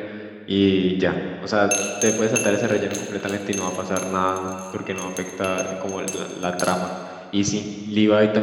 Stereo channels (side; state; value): both; identical; correlation 1.00